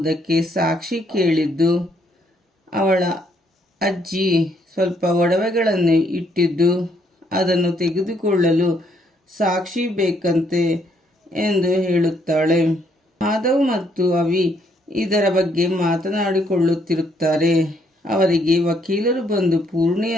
ಸಾಕ್ಷಿ ಕೇಳಿದ್ದು, ಅವಳ ಅಜ್ಜಿ ಸ್ವಲ್ಪ ಒಡವೆಗಳನ್ನು ಇಟ್ಟಿದ್ದು, ಅದನ್ನು ತೆಗೆದುಕೊಳ್ಳಲು ಸಾಕ್ಷಿ ಬೇಕಂತೆ ಎಂದು ಹೇಳುತ್ತಾಳೆ. ಮಾಧವ್ ಮತ್ತು ಅವಿ ಇದರ ಬಗ್ಗೆ ಮಾತನಾಡಿಕೊಳ್ಳುತ್ತಿರುತ್ತಾರೆ. ಅವರಿಗೆ ವಕೀಲರು ಬಂದು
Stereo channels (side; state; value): both; normal; correlation 0.71